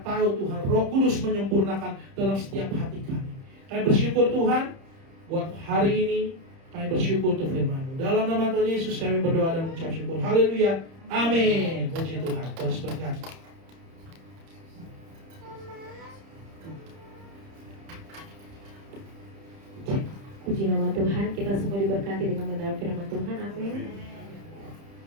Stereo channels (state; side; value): late; left; 30 ms